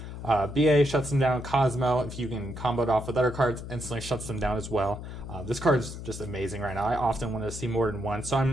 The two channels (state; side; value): noise; left; hum, 9 dB below the sound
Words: BA shuts them down. Cosmo, if you can combo it off with other cards, instantly shuts them down as well. This card is just amazing right now. I often want to see more than one, so